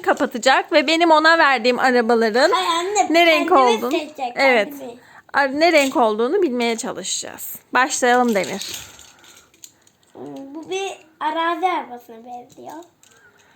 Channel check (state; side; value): identical; both; correlation 1.00